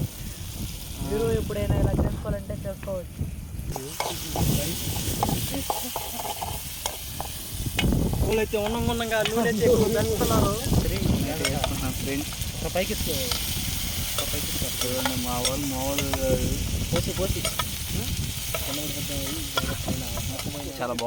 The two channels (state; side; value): identical; both; correlation 1.00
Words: మీరు ఎప్పుడైనా ఇలా చేసుకోవాలంటే చేసుకోవచ్చు. అయితే ఉన్నంగా నూనె వేసుకున్నారు ఫ్రెండ్స్. పైకి మా వాళ్ళు పోసి చాలా